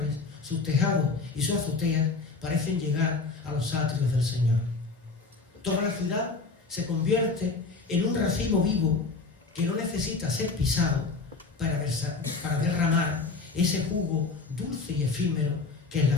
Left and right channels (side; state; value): right; quieter; 4.0 dB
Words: sus tejados y sus azoteas parecen llegar a los atrios del Señor. Toda la ciudad se convierte en un racimo vivo que no necesita ser pisado para derramar ese jugo dulce y efímero que es la